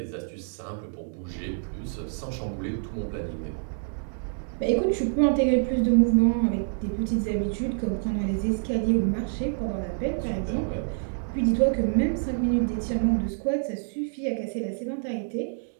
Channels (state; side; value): silent; left; digital silence